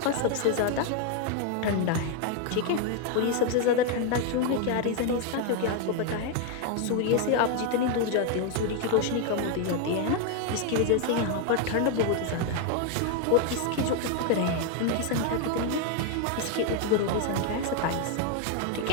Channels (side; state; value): both; different; correlation 0.01